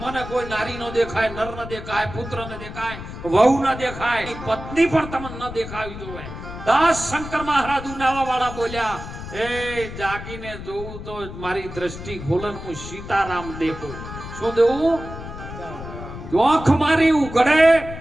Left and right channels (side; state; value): left; noise; rumble, 11 dB below the sound